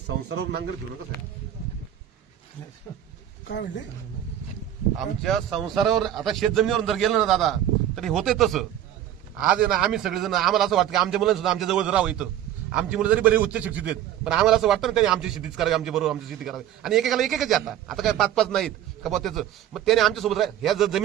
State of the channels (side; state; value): left; quieter; 11.4 dB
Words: नांगर फिरू नका साहेब. काय म्हणले आमच्या संसारावर आता शेतजमिनीवर जर गेलं ना दादा तरी होते तसं. आज आहे ना आम्ही सगळेजण आम्हाला असं वाटतं की आमच्या मुलांना सुद्धा आमच्या जवळ राहावं इथं. आमची मुलं जरी बरी उच्च शिक्षित आहेत पण आम्हाला असं वाटतं ना त्यांनी आमची शेतीच करावी आमच्या बरोबर आमची शेती करावी. आणि एकेकाला एकच आता काय 5-5 नाहीत का बा त्याचं. मग त्याने आमच्यासोबत ह्या जर